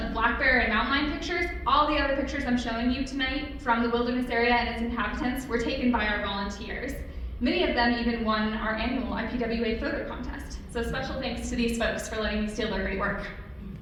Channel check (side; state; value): both; identical; correlation 1.00